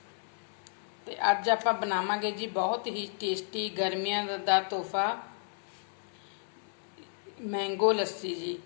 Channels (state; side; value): silent; right; digital silence